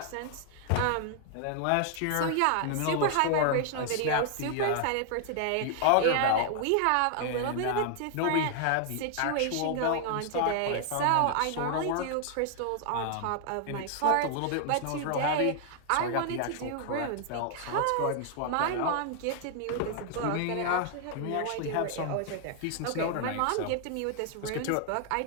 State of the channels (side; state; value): both; different; correlation 0.00